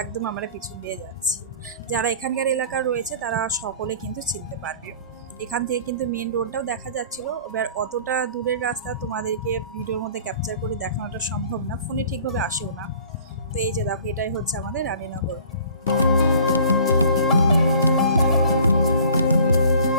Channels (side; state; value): both; inverted; correlation -0.49